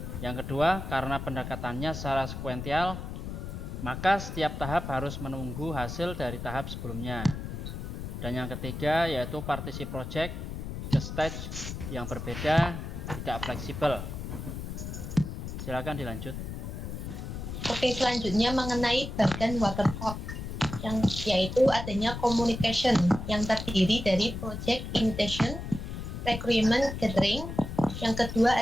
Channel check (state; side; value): noise; left; rumble, 7 dB below the sound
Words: Yang kedua, karena pendekatannya secara sekuensial, maka setiap tahap harus menunggu hasil dari tahap sebelumnya. Dan yang ketiga yaitu partisi project ke stage yang berbeda, tidak fleksibel. Silakan dilanjut. Oke, selanjutnya mengenai badan waterfall, yaitu adanya communication yang terdiri dari project initiation, requirement gathering. Yang kedua